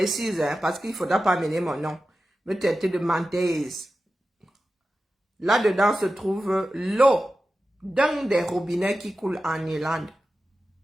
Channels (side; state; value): both; normal; correlation 0.93